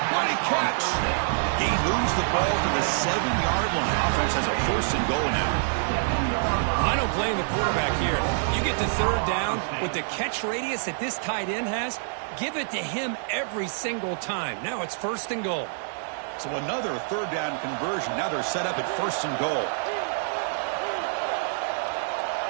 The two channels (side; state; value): left; silent; digital silence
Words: Mighty catch. He moves the ball to the 7-yard line. Offense has a 1st and goal now. I don't blame the quarterback here. You get to 3rd down with the catch radius that this tight end has, give it to him every single time. Now it's 1st and goal. So another 3rd down conversion. Now they're set up at 1st and goal.